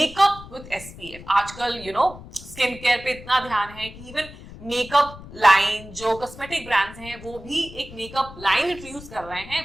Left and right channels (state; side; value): noise; left; rumble, 16 dB below the sound